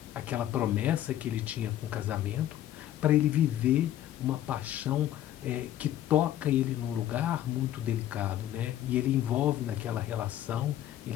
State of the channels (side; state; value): right; quieter; 12.3 dB